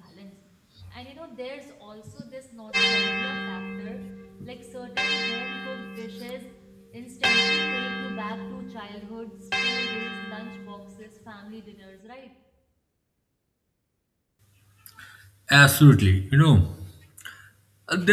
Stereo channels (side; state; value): both; identical; correlation 1.00